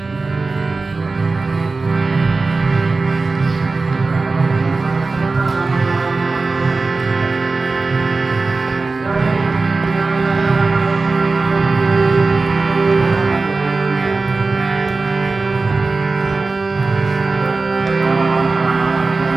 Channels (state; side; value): quieter; left; 3.8 dB